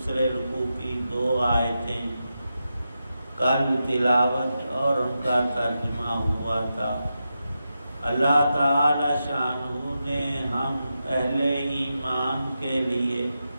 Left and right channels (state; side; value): inverted; both; correlation -0.89